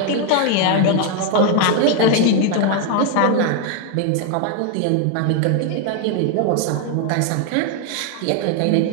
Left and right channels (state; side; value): different; both; correlation 0.01